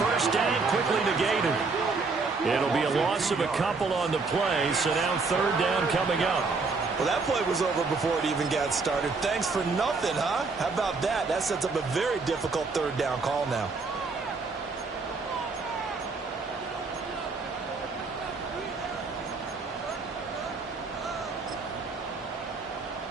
first down quickly negated. It'll be a loss of a couple on the play, so now third down coming up. Well, that play was over before it even got started. Thanks for nothing, huh? How about that? That sets up a very difficult third down call now.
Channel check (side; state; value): left; quieter; 4.2 dB